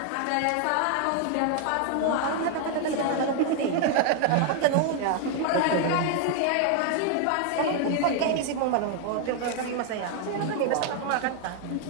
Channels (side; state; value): both; different; correlation 0.00